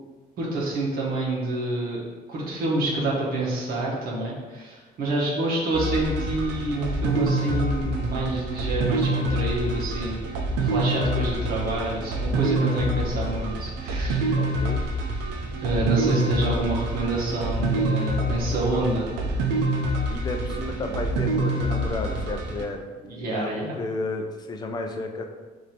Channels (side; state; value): both; normal; correlation 0.46